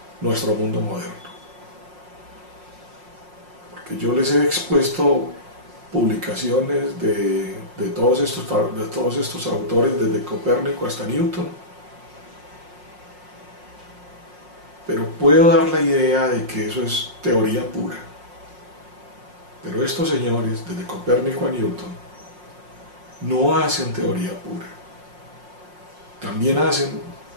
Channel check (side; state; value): left; late; 5.6 ms